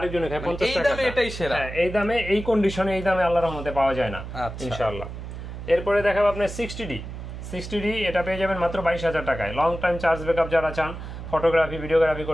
খায় 50 টাকা। এই দামে এটাই সেরা। হ্যাঁ, এই দামে, এই কন্ডিশনে, এই দামে আল্লাহর রহমতে পাওয়া যায় না ইনশাআল্লাহ। এরপরে দেখাবো আপনার 60D। এটা পেয়ে যাবেন মাত্র 22,000 টাকায়। লং টাইম চার্জ ব্যাকআপ যারা চান, ফটোগ্রাফি, ভিডিওগ্রাফি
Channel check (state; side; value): noise; right; hum, 9 dB below the sound